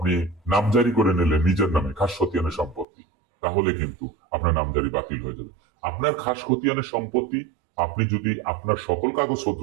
নামজারি করে নিলেন নিজের নামে খাস খতিয়ানের সম্পত্তি, তাহলে কিন্তু আপনার নামজারি বাতিল হয়ে যাবে। আপনার খাস খতিয়ানের সম্পত্তি আপনি যদি আপনার সকল কাগজপত্র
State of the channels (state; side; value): drops out; left; at 2.9 s